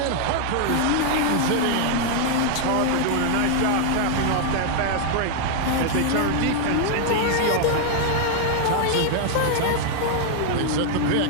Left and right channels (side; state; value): both; different; correlation 0.00